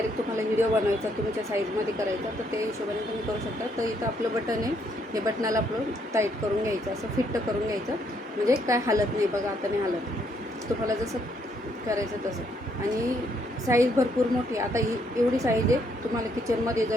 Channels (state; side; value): normal; both; correlation 0.71